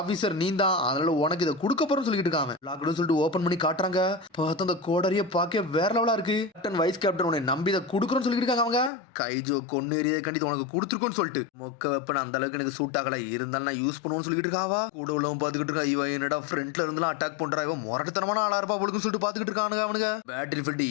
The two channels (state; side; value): drops out; right; at 8.9 s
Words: நீ தான், அதனால உனக்கு இதை கொடுக்க போறோம் சொல்லிட்டு இருக்காங்க. சொல்லிட்டு ஓபன் பண்ணி காட்டுறாங்க. பார்த்து அந்த கோடரிய பார்க்க வேற லெவலா இருக்கு. கேப்டன் வைஸ் கேப்டன் உன்னை நம்பி இதை கொடுக்குறோன்னு சொல்லிட்டு இருக்காங்க அவங்க. கைஜோ கொன்னு எறிய கண்டிப்பா உனக்கு கொடுத்துருக்கோன்னு சொல்லிட்டு மொக்க வெப்பன் அந்த அளவுக்கு எனக்கு சூட் ஆகல, இருந்தாலும் நான் யூஸ் பண்ணுவோம்னு சொல்லிட்டு இருக்காவா. கூட உள்ளவன் பாத்துக்கிட்டு இருக்கா, இவன் என்னடா ஃப்ரண்ட்ல இருந்தெல்லாம் அட்டாக் பண்றா, இவன் முரட்டத்தனமான ஆளா இருப்பா அவளுக்கு சொல்லிட்டு பாத்துக்கிட்டு இருக்கானுங்க அவனுங்க. பேட்டில் ஃபீல்ட்